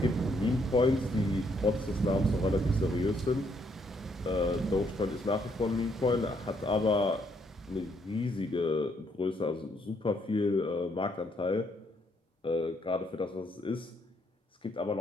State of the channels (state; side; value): normal; both; correlation 0.72